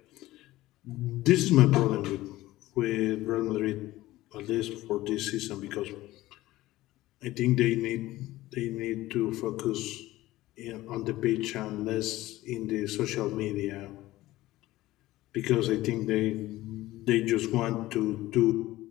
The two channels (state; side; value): quieter; right; 16.9 dB